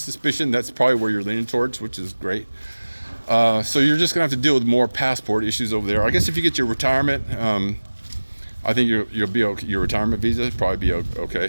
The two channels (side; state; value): both; inverted; correlation -1.00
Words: that's probably where you're leaning towards, which is great. So you're just gonna have to deal with more passport issues over there. I guess if you get your retirement, I think you'll be okay. Your retirement visa probably be